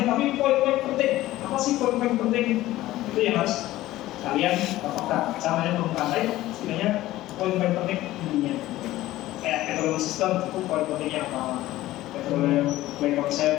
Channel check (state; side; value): quieter; right; 15.9 dB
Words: tapi poin-poin penting, apa sih poin-poin penting itu yang harus kalian apakah caranya bermukai, sebenarnya poin-poin penting intinya. Kayak metode sistem itu poin pentingnya apa, metode play